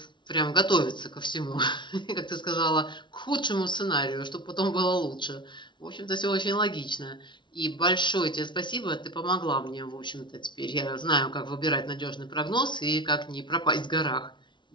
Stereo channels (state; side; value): late; right; 0.23 ms